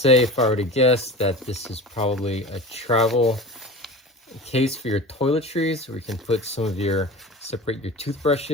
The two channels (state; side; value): normal; both; correlation 0.34